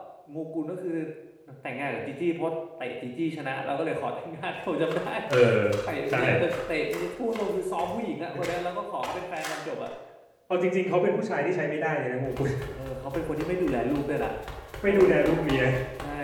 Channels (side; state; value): both; identical; correlation 1.00